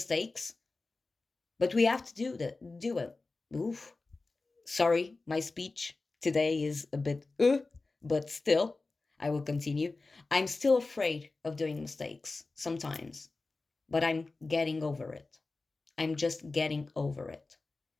But we have to do it. Oof. Sorry, my speech today is a bit but still, I will continue. I'm still afraid of doing mistakes sometimes, but I'm getting over it. I'm just getting over it.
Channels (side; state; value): right; quieter; 3.6 dB